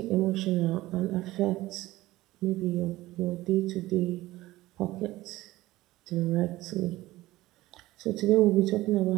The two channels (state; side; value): quieter; left; 17.5 dB